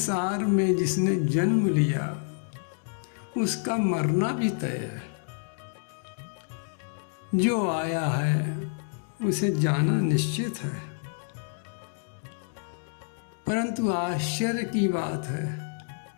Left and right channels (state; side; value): silent; right; digital silence